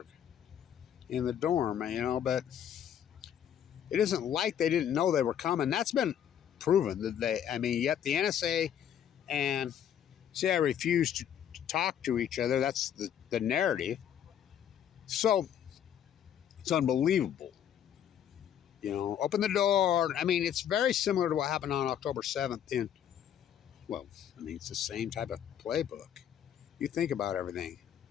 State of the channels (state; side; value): quieter; right; 9.5 dB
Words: in the dorm, but it isn't like they didn't know they were coming. That's been proven yet the NSA and CIA refused to talk to each other. That's the narrative. So it's unbelievable. Open the door. I mean, it's very similar to what happened on October 7th it's the same type of playbook. You think about everything.